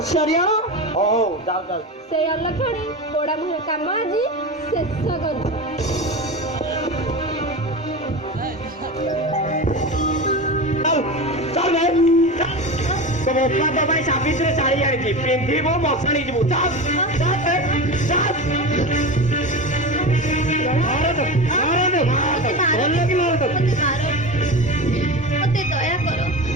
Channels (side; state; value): both; normal; correlation 0.26